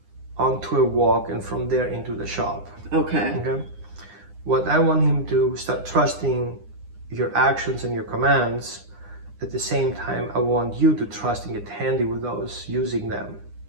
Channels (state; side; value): late; left; 9.8 ms